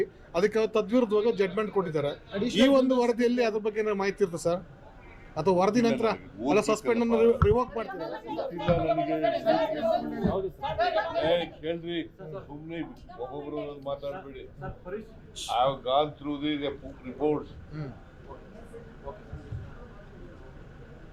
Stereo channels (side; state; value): both; identical; correlation 1.00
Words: ಅದಕ್ಕೆ ತದ್ವಿರುದ್ಧವಾಗಿ ಜಡ್ಜ್ಮೆಂಟ್ ಕೊಟ್ಟಿದ್ದಾರೆ. ಈ ಒಂದು ವರದಿಯಲ್ಲಿ ಅದ್ರ ಬಗ್ಗೆ ಏನಾದ್ರು ಮಾಹಿತಿ ಇರುತ್ತೆ ಸರ್, ಅಥವಾ ವರದಿ ನಂತರ ಅಲ್ಲ ಸಸ್ಪೆಂಡ್ ಅನ್ನು ರಿವೋಕ್ ಮಾಡ್ತಿದ್ದಾರೆ? ಕೇಳ್ರಿ, ಸುಮ್ಮನೆ ಒಬ್ಬೊಬ್ರು ಮಾತಾಡ್ಬೇಡಿ. I have gone through the reports.